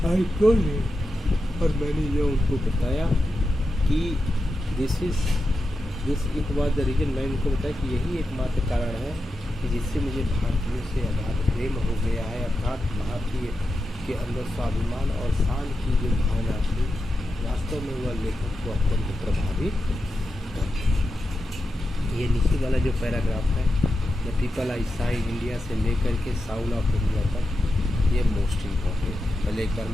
आई टोल्ड और मैंने ये उनको बताया कि this it was the reason. मैं उनको बताया कि यही एकमात्र कारण है कि जिससे मुझे भारतीयों से अगाध प्रेम हो गया है, अर्थात भारतीय के अंदर स्वाभिमान और शान की जो भावना थी, वास्तव में वह लेखक को अत्यंत प्रभावित करती है। ये नीचे वाला जो पैराग्राफ है, the people I saw in India से लेकर के साउल ऑफ इंडिया तक, ये मोस्ट इम्पॉर्टेंट। पहले एक बार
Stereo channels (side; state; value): both; normal; correlation 0.89